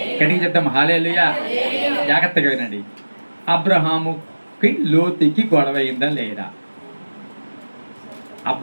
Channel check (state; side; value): inverted; both; correlation -1.00